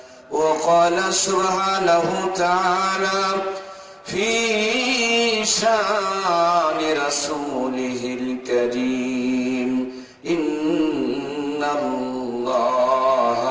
وقال سبحانه تعالى في شان رسوله الكريم إن الله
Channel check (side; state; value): both; identical; correlation 1.00